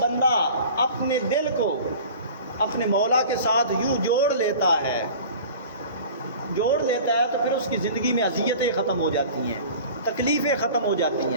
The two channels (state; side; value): inverted; both; correlation -0.41